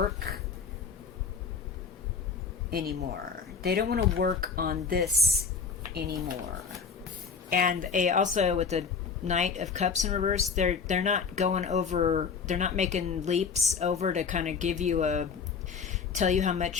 anymore. They don't want to work on this anymore. And also with the Knight of Cups in reverse, they're not going over, they're not making leaps over to kind of give you tell you how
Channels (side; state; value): right; quieter; 5.7 dB